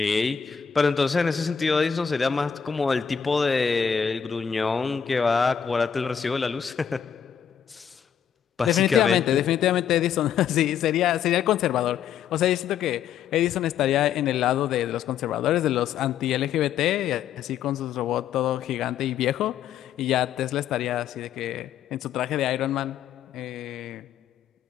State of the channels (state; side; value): quieter; right; 8.0 dB